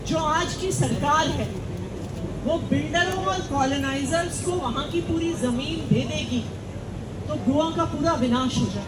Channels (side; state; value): both; identical; correlation 1.00